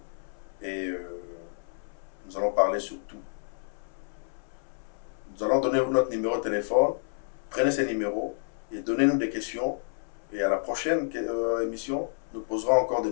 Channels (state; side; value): silent; right; 58 dB below the other